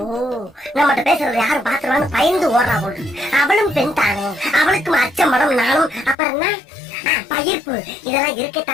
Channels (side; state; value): right; drops out; at 6.2 s